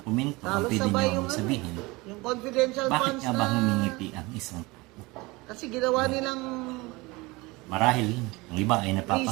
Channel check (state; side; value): quieter; left; 23.4 dB